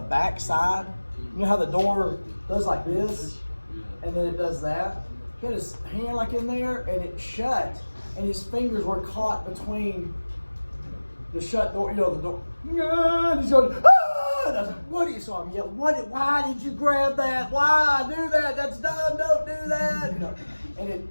side. You know how the door does like this, and then it does that? He had his hand like in there, and it shut, and his fingers were caught between the shut door, the door. And he's going, ah! And I was like, what do you saw him yell? Why did you grab that? Why do that? That's dumb, don't do that. And it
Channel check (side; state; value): both; inverted; correlation -1.00